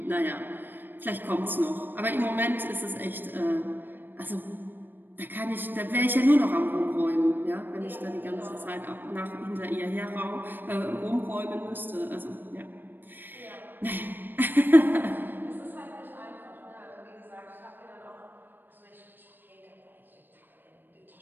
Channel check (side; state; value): left; late; 0.093 ms